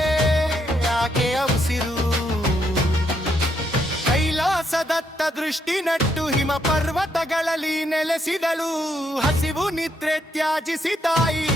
ಆಕೆಯ ಉಸಿರು. ಕೈಲಾಸದತ್ತ ದೃಷ್ಟಿ ನಟ್ಟು ಹಿಮ ಪರ್ವತಗಳಲ್ಲಿ ನೆಲೆಸಿದಳು. ಹಸಿವು ನಿದ್ರೆ ತ್ಯಾಜಿಸಿ ತಾಯಿ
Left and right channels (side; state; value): both; normal; correlation 0.76